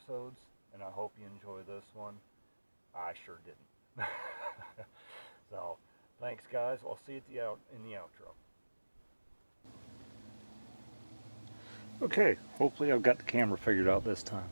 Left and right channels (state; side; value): inverted; both; correlation -1.00